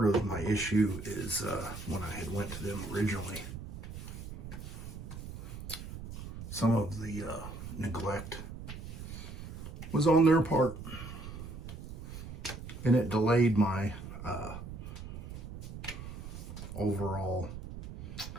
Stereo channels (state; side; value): noise; right; rumble, 10 dB below the sound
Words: of my issue is when I had went to them originally, some of the neglect was on their part, and it delayed my overall